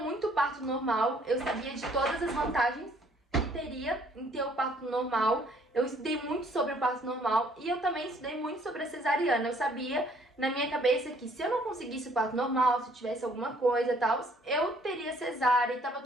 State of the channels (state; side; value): normal; both; correlation 0.61